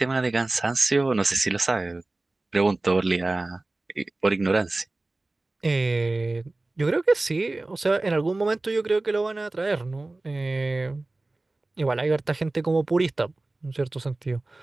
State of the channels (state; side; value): quieter; left; 3.0 dB